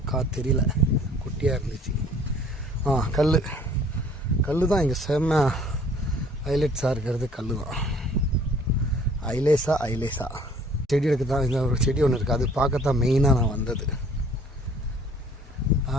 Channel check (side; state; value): both; normal; correlation 0.55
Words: தெரியல, குட்டியாக இருந்துச்சு. கல் தான் இங்கே செம்ம ஹைலைட்ஸாக இருக்கிறது. கல் தான் ஐலேஸா செடி எடுக்க தான் இந்த ஒரு செடி ஒன்று இருக்குது, அது பார்க்கத்தான் மெயினாக நான் வந்தது.